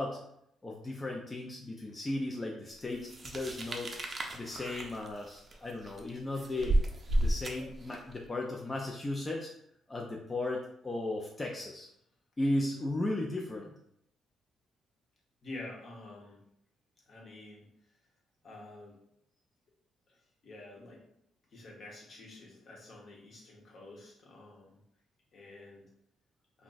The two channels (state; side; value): normal; both; correlation 0.89